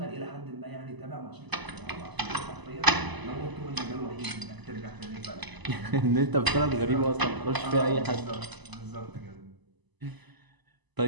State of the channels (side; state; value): left; late; 1.0 ms